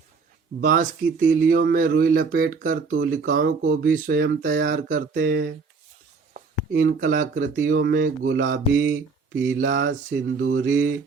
बांस की तीलियों में रुई लपेटकर तूलिकाओं को भी स्वयं तैयार करते हैं। इन कलाकृतियों में गुलाबी, पीला, सिंदूरी,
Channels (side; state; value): left; quieter; 4.8 dB